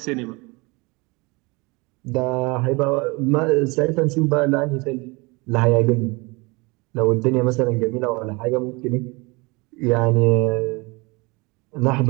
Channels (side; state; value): left; quieter; 26.5 dB